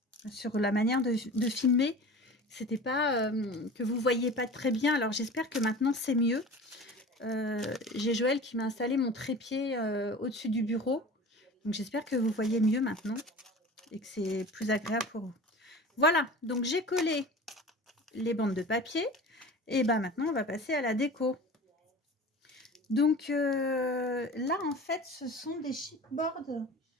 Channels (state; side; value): normal; both; correlation 0.37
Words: sur la manière de filmer. C'était pas que vous voyez pas très bien. Alors j'espère que maintenant c'est mieux. J'ai Joël qui m'a installé mon trépied au-dessus du bureau. Donc j'espère que vous voyez mieux maintenant et que c'est plus agréable pour vous. Voilà, donc j'ai collé les bandes de papier. Et ben maintenant, on va passer à la déco. Donc là, en fait, ce sont des chipboards